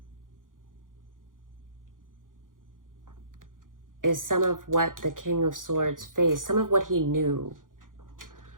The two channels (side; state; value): left; late; 0.89 ms